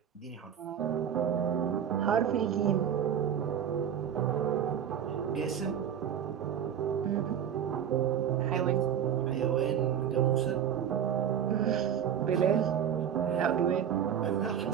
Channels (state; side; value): quieter; left; 8.9 dB